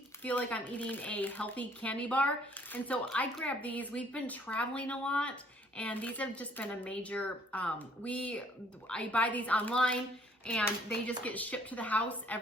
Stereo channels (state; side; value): normal; both; correlation 0.61